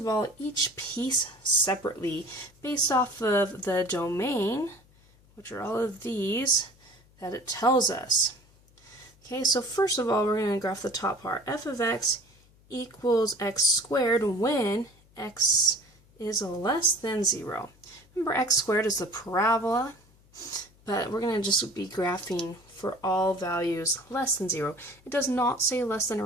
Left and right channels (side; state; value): left; noise; hum, 29 dB below the sound